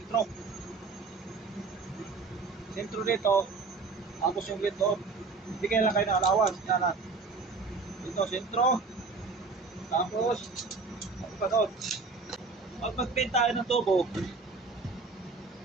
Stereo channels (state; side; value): quieter; left; 4.2 dB